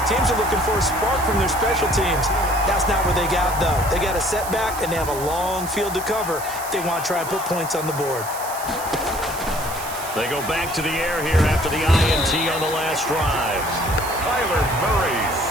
teams are looking for a spark from their special teams. That's not what they got, though. They got a setback, and they have a long field to cover if they want to try and put points on the board. They go back to the air here after the INT on the last drive. Kyler Murray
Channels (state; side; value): noise; right; hiss, 11 dB below the sound